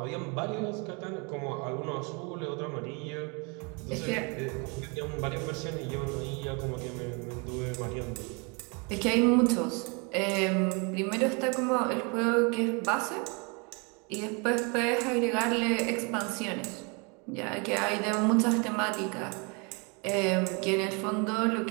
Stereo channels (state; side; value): quieter; left; 32.2 dB